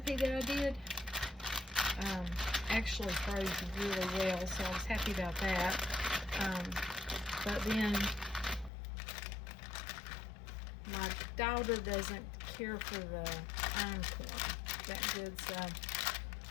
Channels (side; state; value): right; drops out; at 8.7 s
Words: that I did actually froze really well, so I was happy about that. But then my daughter doesn't care for the einkorn that good, so I'm